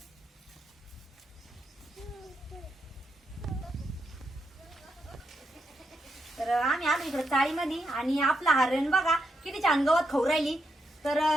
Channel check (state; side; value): normal; both; correlation 0.82